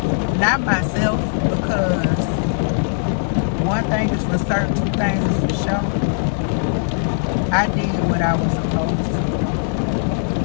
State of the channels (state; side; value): silent; right; digital silence